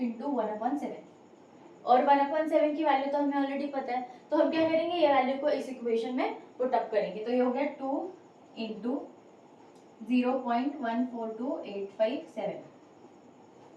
1/7, और 1/7 की वैल्यू तो हमें ऑलरेडी पता है, तो हम क्या करेंगे, ये वैल्यू को इस इक्वेशन में पुट अप करेंगे। तो ये हो गया 2 × 0.142857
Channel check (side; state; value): both; identical; correlation 1.00